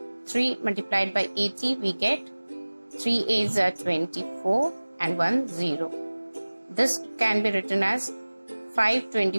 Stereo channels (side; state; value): both; inverted; correlation -1.00